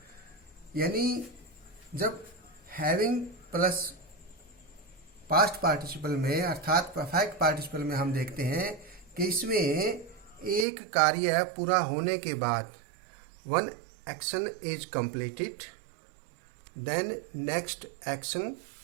यानी जब हैविंग प्लस पास्ट पार्टिसिपल में अर्थात परफेक्ट पार्टिसिपल में हम देखते हैं कि इसमें एक कार्य पूरा होने के बाद one action is completed, then next action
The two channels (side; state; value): left; drops out; at 10.7 s